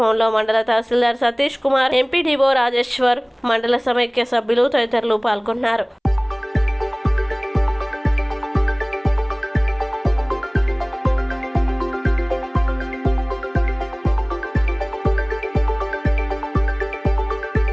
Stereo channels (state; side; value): identical; both; correlation 1.00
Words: మండల తహసీల్దార్ సతీష్ కుమార్, ఎంపీడీఓ రాజేశ్వర్, మండల సమైక్య సభ్యులు తదితరులు పాల్గొన్నారు.